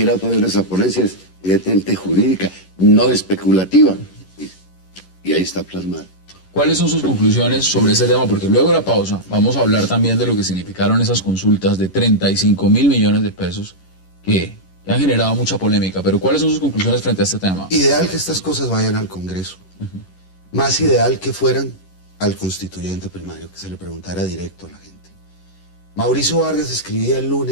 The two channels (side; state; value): right; late; 11 ms